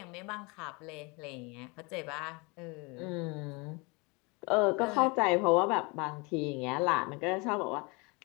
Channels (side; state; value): right; quieter; 28.5 dB